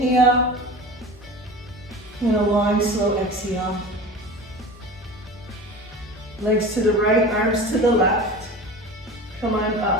and a long, slow exhale. Legs to the right, arms to the left. Come on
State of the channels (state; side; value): normal; both; correlation 0.34